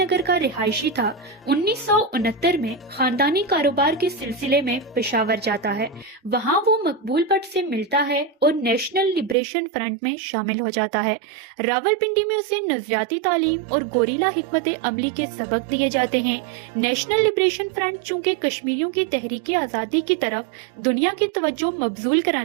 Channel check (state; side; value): drops out; left; at 9.3 s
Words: का रिहायशी था, 1969 में खानदानी कारोबार के सिलसिले में पेशावर जाता है। वहाँ वो मकबूल भट्ट से मिलता है और नेशनल लिबरेशन फ्रंट में शामिल हो जाता है। रावलपिंडी में उसे नजरियाती तालीम और गोरिल्ला हिकमत अमली के सबक दिए जाते हैं। नेशनल लिबरेशन फ्रंट चूँकि कश्मीरियों की तहरीक आज़ादी की तरफ दुनिया की तवज्जो मबजूल